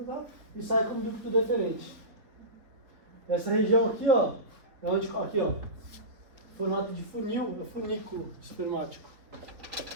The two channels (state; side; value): late; left; 4.1 ms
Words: e sai como ducto deferente. Essa região aqui, ó, é onde, aqui, ó, formato de funil, é funículo espermático.